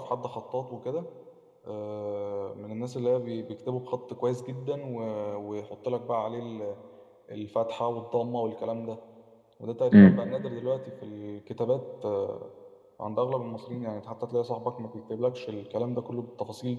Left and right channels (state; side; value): identical; both; correlation 1.00